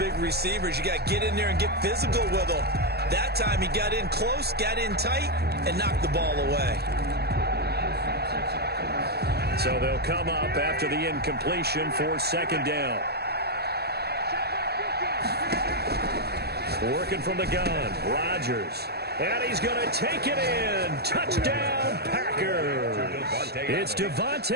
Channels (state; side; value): late; left; 0.47 ms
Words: receivers. You got to get in there and get physical with them. That time he got in close, got in tight, and knocked the ball away. So they'll come up after the incompletion for second down. Working from the gun, Rodgers. And he's going to take it in. Touchdown, Packers. It's